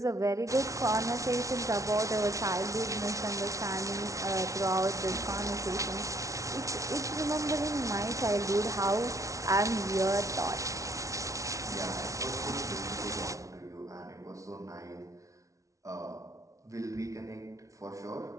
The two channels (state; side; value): late; left; 0.16 ms